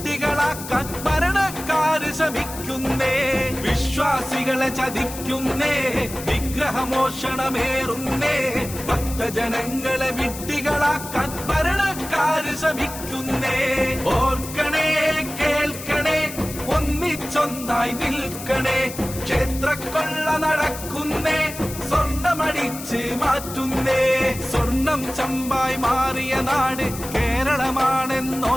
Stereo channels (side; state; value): left; noise; hiss, 11 dB below the sound